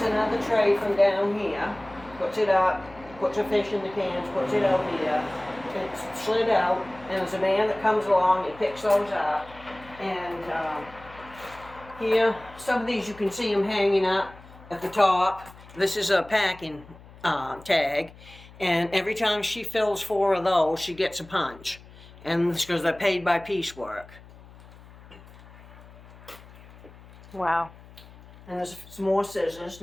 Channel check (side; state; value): left; noise; hum, 21 dB below the sound